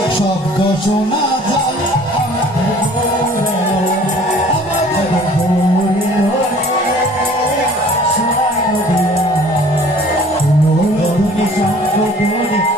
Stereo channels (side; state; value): both; normal; correlation 0.51